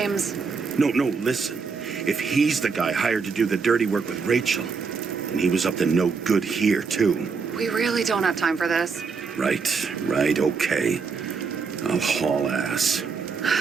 No, listen. If he's the guy hired to do the dirty work with Rachel, and he was up to no good here, too. we really don't have time for this. Right, okay. I'll haul ass.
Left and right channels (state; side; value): quieter; left; 5.1 dB